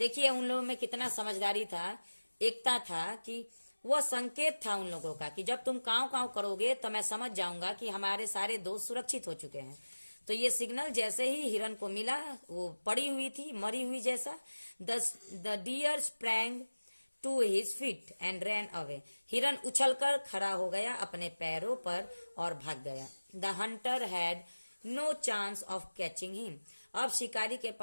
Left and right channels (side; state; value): both; inverted; correlation -1.00